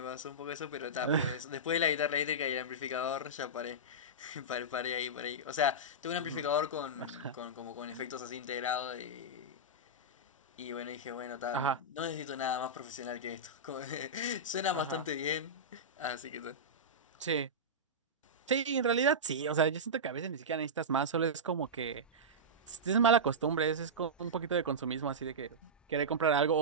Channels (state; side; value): normal; both; correlation -0.13